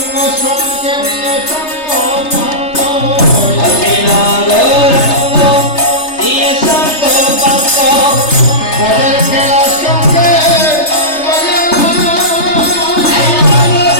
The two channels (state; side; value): late; right; 3.3 ms